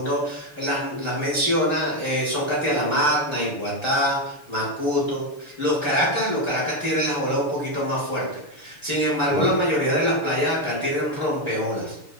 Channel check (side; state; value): right; late; 6.8 ms